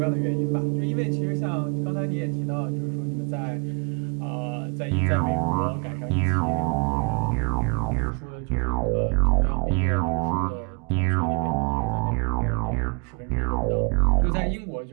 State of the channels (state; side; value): quieter; left; 33.9 dB